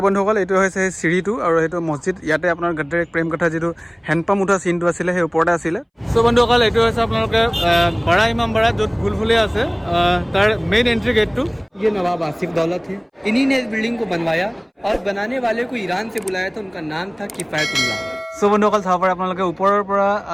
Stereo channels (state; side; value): identical; both; correlation 1.00